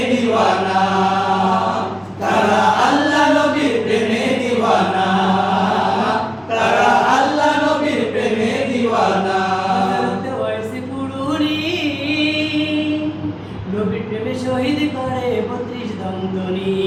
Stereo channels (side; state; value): both; identical; correlation 1.00